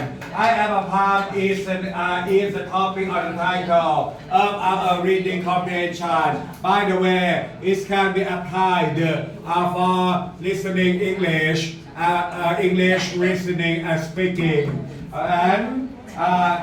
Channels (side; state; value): both; identical; correlation 1.00